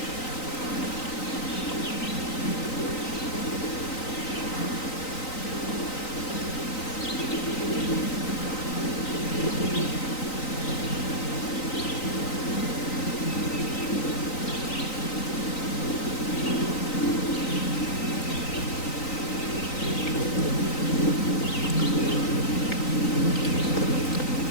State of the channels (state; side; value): late; right; 3.9 ms